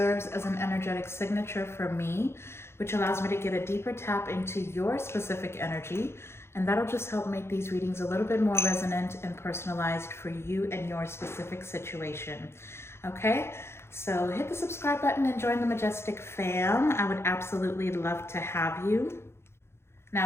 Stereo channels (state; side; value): late; right; 0.12 ms